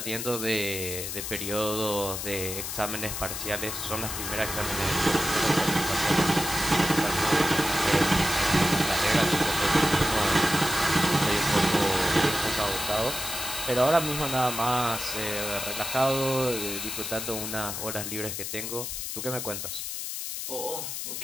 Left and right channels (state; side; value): noise; left; hiss, 5 dB below the sound